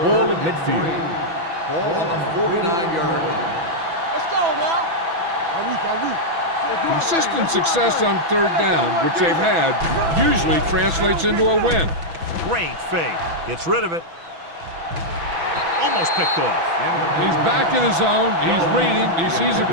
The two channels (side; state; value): left; late; 6.0 ms